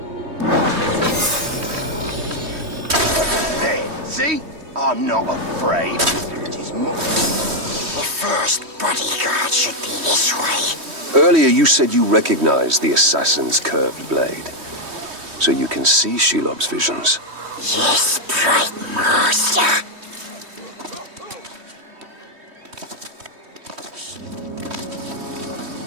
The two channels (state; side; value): late; left; 3.1 ms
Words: There, see? I'm not afraid. It is more... The first bodyguard should be this way. Earlier you said you recognized the assassin's curved blade. So you can see Shelob's visions. Yes, bright master.